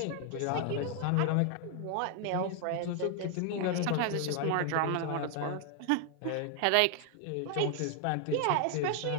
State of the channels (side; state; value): both; different; correlation 0.00